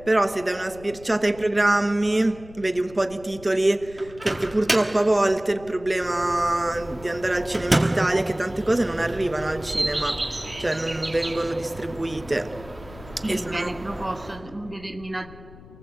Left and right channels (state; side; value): noise; left; rumble, 19 dB below the sound